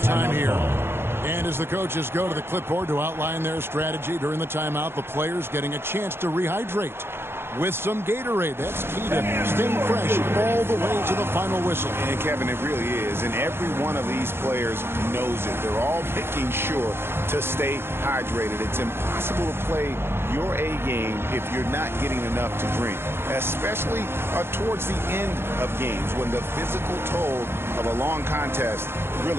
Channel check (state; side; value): late; left; 0.11 ms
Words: here. And as the coaches go to the clipboard to outline their strategy during the timeout, the players getting a chance to rehydrate with some Gatorade. That's key to staying fresh all the way to the final whistle. And Kevin, it really is. And every one of these players knows it. They're all making sure to stay hydrated. It's impossible to play your A game if you're not getting enough to drink, especially towards the end of games when the physical toll of a long contest